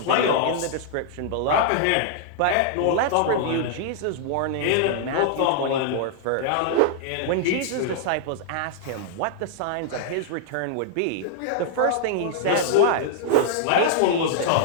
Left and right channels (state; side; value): different; both; correlation -0.01